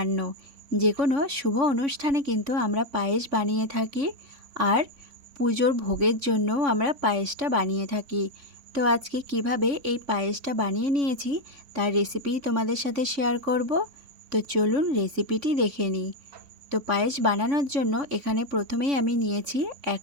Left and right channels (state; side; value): late; left; 3.5 ms